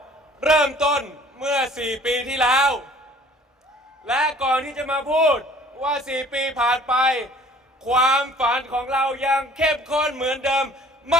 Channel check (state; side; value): normal; both; correlation 0.52